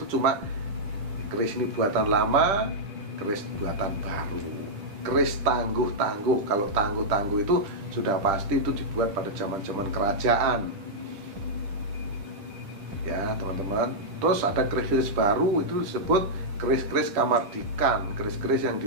cuma keris ini buatan lama, keris buatan baru. Keris tangguh-tangguh, kalau tangguh-tangguh itu sudah pasti itu dibuat pada zaman-zaman kerajaan ya teman-teman. Terus ada keris-keris baru, itu disebut keris-keris kamardikan, keris-keris yang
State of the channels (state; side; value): late; left; 10 ms